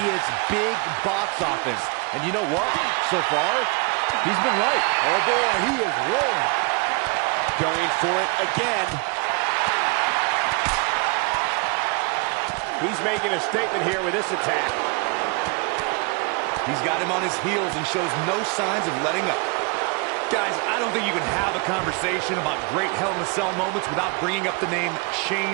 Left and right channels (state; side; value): quieter; left; 31.0 dB